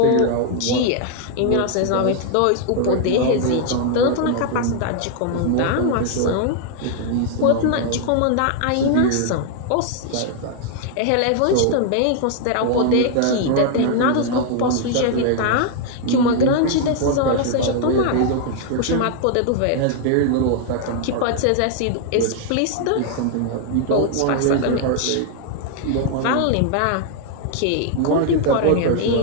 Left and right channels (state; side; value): different; both; correlation 0.00